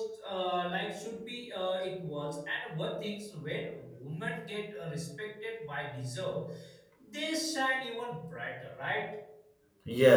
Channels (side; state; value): both; identical; correlation 1.00